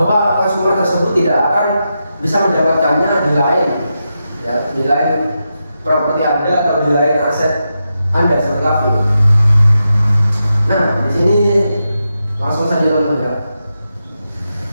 konsumer tersebut tidak akan bisa mendapatkannya di lain, ya, di lain properti Anda atau di lain aset Anda seperti kafe. Nah, di sini langsung saja teman-teman ya.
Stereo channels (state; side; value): inverted; both; correlation -0.88